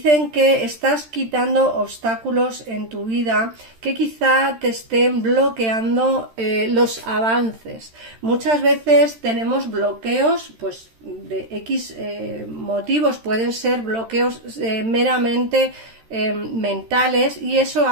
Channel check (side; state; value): left; late; 13 ms